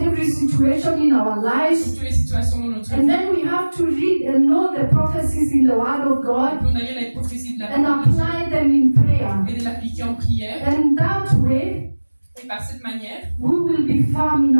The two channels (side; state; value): both; inverted; correlation -1.00